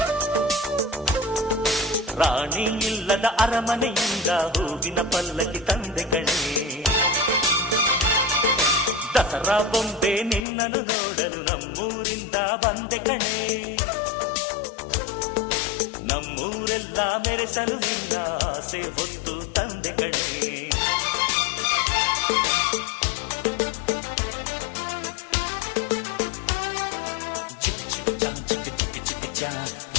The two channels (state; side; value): drops out; right; at 10.5 s